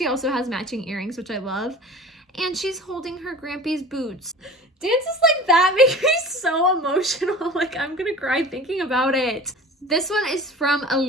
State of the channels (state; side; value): normal; both; correlation 0.39